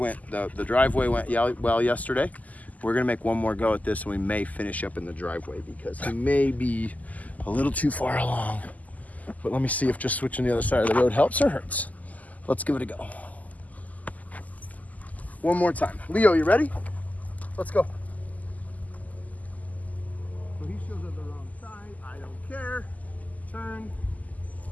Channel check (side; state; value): right; late; 0.077 ms